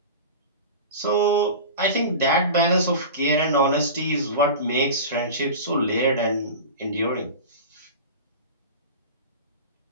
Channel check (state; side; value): inverted; both; correlation -0.31